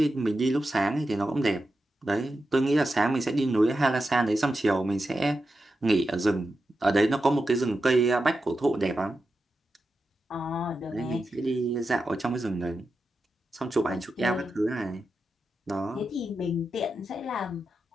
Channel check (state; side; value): normal; both; correlation 0.90